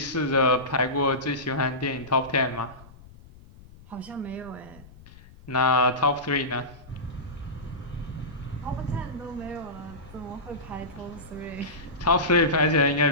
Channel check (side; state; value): left; noise; rumble, 21 dB below the sound